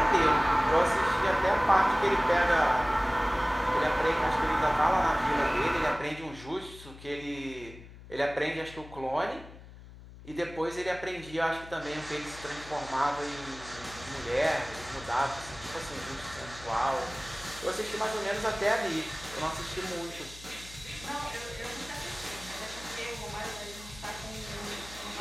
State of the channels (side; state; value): left; noise; hum, 17 dB below the sound